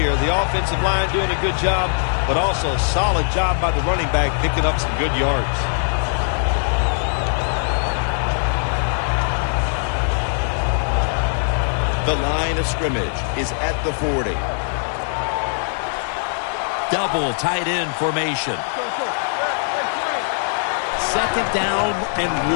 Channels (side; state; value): right; silent; 63 dB below the other